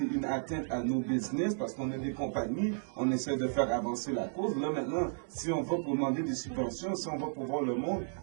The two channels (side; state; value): left; silent; digital silence